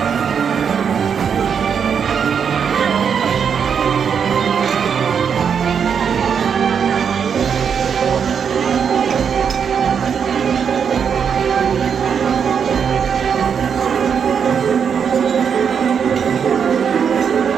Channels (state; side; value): quieter; left; 7.1 dB